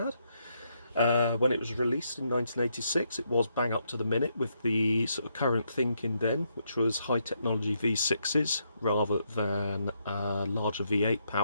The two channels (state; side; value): inverted; both; correlation -0.77